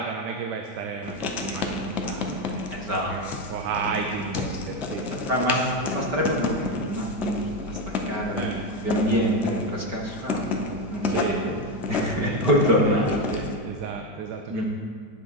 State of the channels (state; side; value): late; left; 5.2 ms